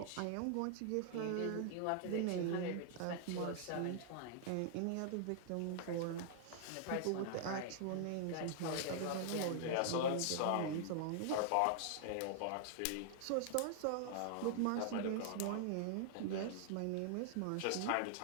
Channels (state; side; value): different; both; correlation -0.01